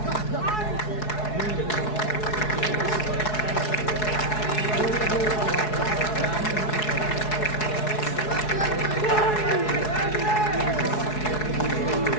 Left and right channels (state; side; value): late; right; 4.7 ms